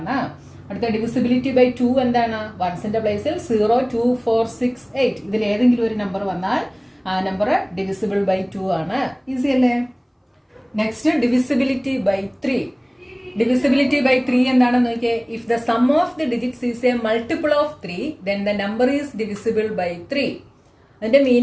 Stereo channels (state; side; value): identical; both; correlation 1.00